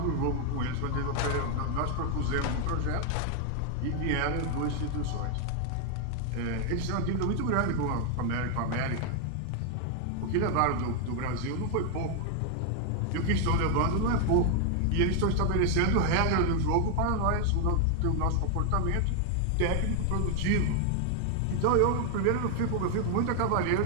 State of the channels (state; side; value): different; both; correlation 0.00